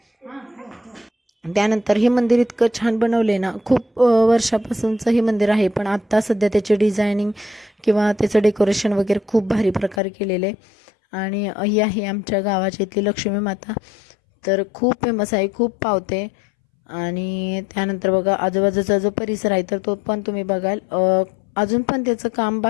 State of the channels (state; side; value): drops out; right; at 10.0 s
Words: त्यानंतर हे मंदिर इतकं छान बनवले ना, खूप वर्षापासूनचं हे मंदिर आहे, पण आत्ता सध्या त्याचे डिझायनिंग किंवा त्याचं डेकोरेशन वगैरे खूप भारी प्रकारे केलेलं आहे. आणि ही आहे आमच्या गावाची इथली लक्ष्मी माता, तर खूप फेमस आहे, खूप पावते. आणि त्यानंतर बघा आजूबाजूचा जो परिसर आहे तर तो पण तुम्ही बघाल, अजून पण त्याचं काम